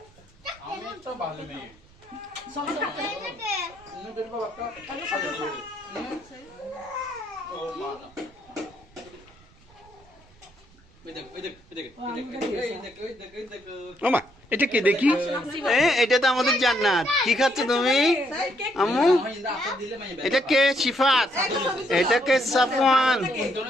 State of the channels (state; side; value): noise; right; rumble, 28 dB below the sound